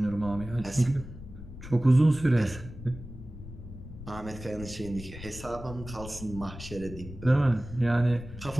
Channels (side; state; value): left; noise; rumble, 13 dB below the sound